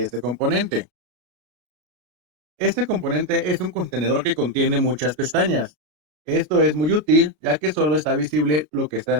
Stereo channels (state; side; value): late; left; 33 ms